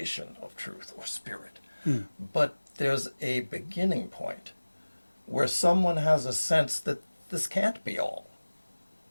of truth or spirit, but there's a beginning point where someone has a sense that this can't be all.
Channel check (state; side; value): inverted; both; correlation -1.00